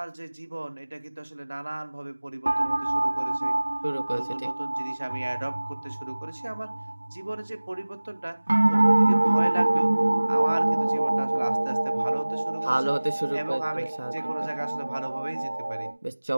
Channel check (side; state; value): both; inverted; correlation -1.00